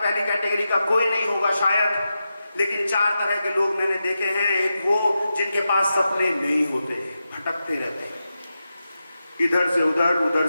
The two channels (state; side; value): inverted; both; correlation -0.90